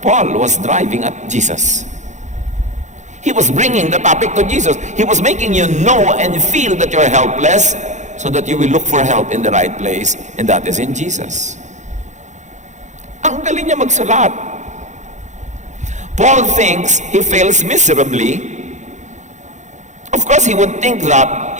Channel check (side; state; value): left; late; 0.34 ms